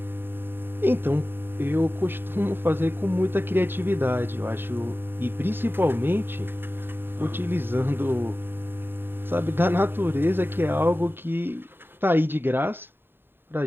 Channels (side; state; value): left; late; 0.10 ms